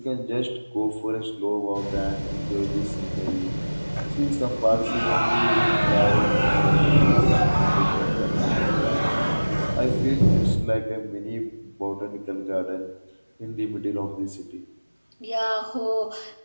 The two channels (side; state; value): both; inverted; correlation -1.00